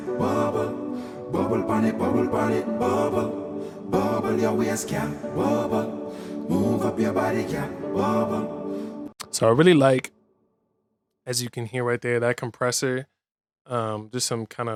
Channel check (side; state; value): both; identical; correlation 1.00